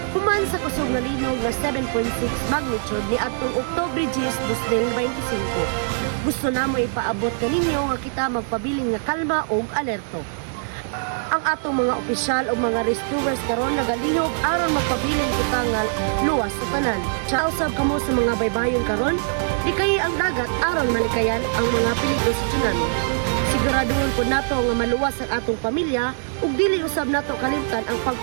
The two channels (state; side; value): silent; left; 59 dB below the other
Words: human sa kusog nga linog nga 7.6 magnitude ni atong Oktubre 10, 2025. Gusto namo ipaabot kaninyo nga kita magpabiling nga kalma og alerto. Ang atong mga opisyal o mga rescuers karon nagalihok aron magpabiling kita nga luwas sa tanan. Sa usab kamo sa mga baybayon karon, di kay ang dagat aron malikayan ang mga peligro sa tsunami. Siguraduhon po nato nga maluwas ang atong pamilya ug dili usab nato kalimtan ang